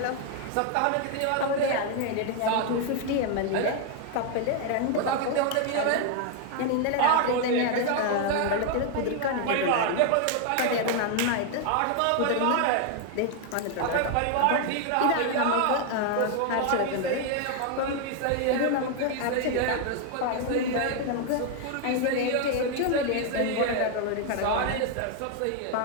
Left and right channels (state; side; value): different; both; correlation 0.00